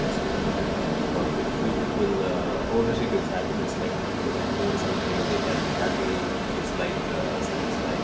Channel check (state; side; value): identical; both; correlation 1.00